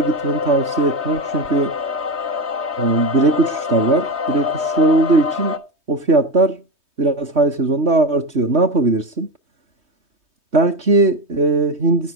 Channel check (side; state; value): left; late; 3.2 ms